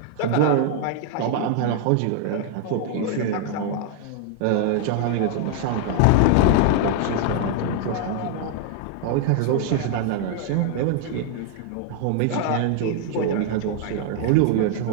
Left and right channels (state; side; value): different; both; correlation 0.00